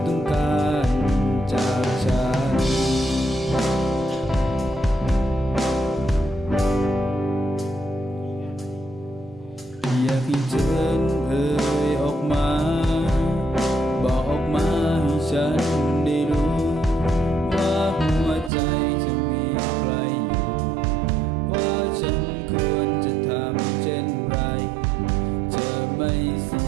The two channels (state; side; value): drops out; left; at 18.5 s